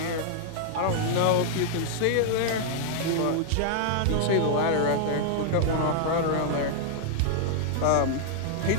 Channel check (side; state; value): both; different; correlation -0.01